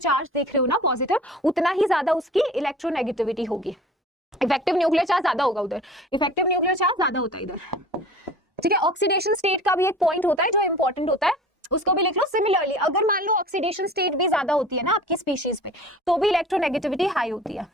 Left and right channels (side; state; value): both; normal; correlation 0.43